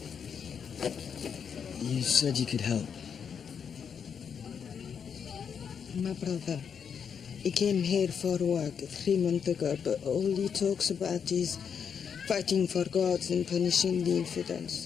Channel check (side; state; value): right; quieter; 7.1 dB